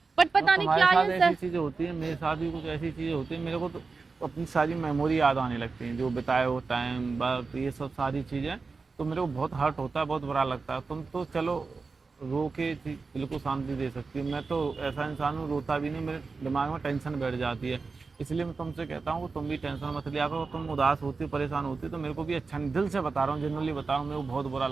बट तो पता नहीं तुम्हारे क्या साथ ये ऐसी चीजें होती है, मेरे साथ भी कुछ ऐसी चीजें होती है, मेरे को तो अपनी सारी मेमोरी याद आने लगती हैं, जो बिताए हो टाइम, बात, ये सब सारी चीजें, तो मेरे को बहुत हर्ट होता है, बहुत बुरा लगता है। तुम तो चलो रो के दिल को शांति दे सकती हो, मैं तो ऐसा इंसान हूँ, रोता भी नहीं, मेरे दिमाग में टेंशन बैठ जाती है। इसलिए मैं तुमसे कहता हूँ तुम भी टेंशन मत लिया करो। तुम उदास होती परेशान होती तो मेरे को भी अच्छा नहीं, दिल से बता रहा हूँ, जनरली बता रहा हूँ, मेरे को बहुत बुरा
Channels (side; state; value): left; quieter; 4.4 dB